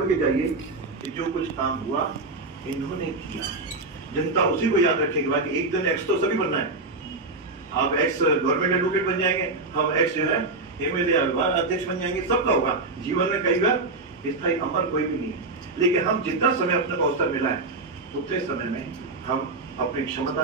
के जाइए कि जो कुछ काम हुआ इन्होंने किया। जनता उसी को याद रखेगी। बाकी एक दिन एक्स तो सभी बनना है। आप एक्स गवर्नमेंट एडवोकेट बन जाएंगे, हम एक्स जो है एमएलए अध्यक्ष बन जाएंगे, सबका होगा। जीवन में कई बार स्थायी अमर कोई भी नहीं है, लेकिन हम जितना समय अपने को अवसर मिला है उतने समय में हम अपनी क्षमता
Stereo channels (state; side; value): quieter; left; 3.3 dB